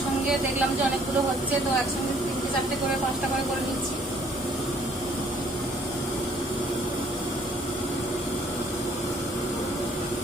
দেখলাম যে অনেকগুলো হচ্ছে, তো একসঙ্গে 3টে 4টে করে 5টা করে নিচ্ছি।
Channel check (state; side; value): normal; both; correlation 0.61